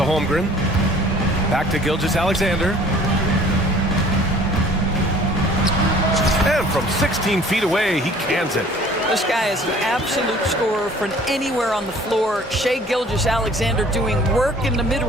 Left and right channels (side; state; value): both; normal; correlation 0.52